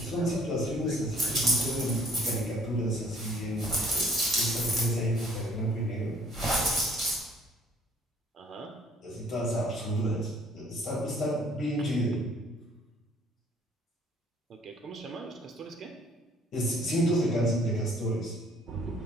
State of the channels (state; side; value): normal; both; correlation 0.60